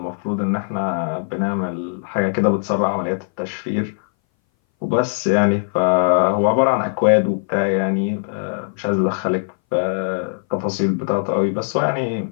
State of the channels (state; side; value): silent; right; 60 dB below the other